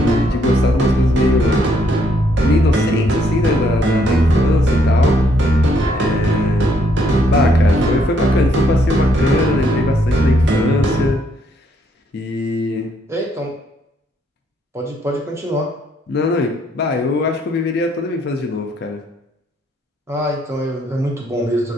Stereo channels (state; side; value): normal; both; correlation 0.70